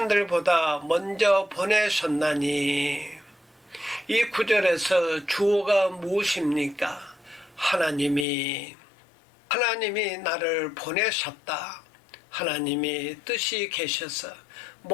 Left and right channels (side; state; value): right; drops out; at 8.2 s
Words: 먼저 보내셨나니. 이 구절에서 주어가 무엇입니까? 하나님이 나를 보내셨다. 하나님이 뜻이 계셔서